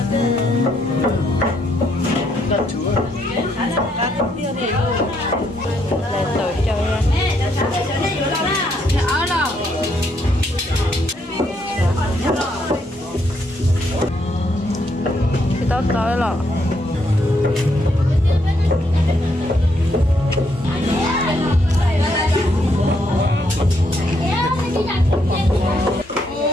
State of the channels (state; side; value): normal; both; correlation 0.74